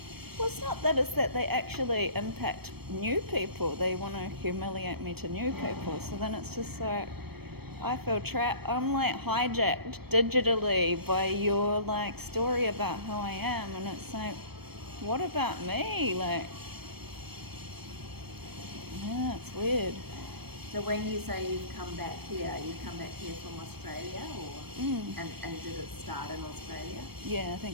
Well, it's not that, it's that they actually impact new people. They want to humiliate me to new people. So then it's just like, I feel trapped. I'm like hijacked digitally by your like story about who I am, and it's like, what about me? Like, yeah, it's weird. So when you say you've come back here from Australia, or and did it start in Australia? Yeah, I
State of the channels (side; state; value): left; late; 0.97 ms